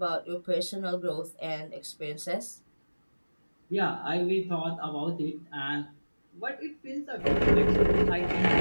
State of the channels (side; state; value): both; inverted; correlation -1.00